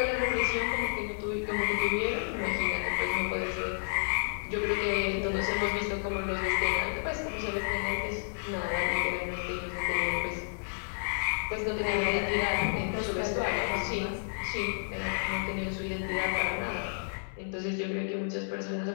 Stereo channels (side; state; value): right; silent; 57 dB below the other